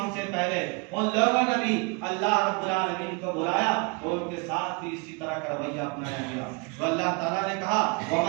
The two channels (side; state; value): left; quieter; 30.8 dB